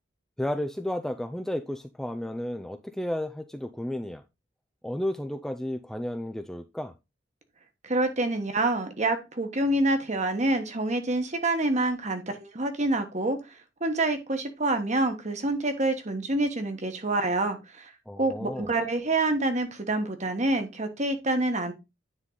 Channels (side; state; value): both; normal; correlation 0.38